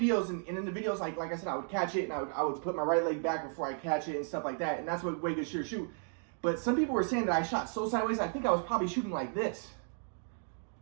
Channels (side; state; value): left; silent; 55 dB below the other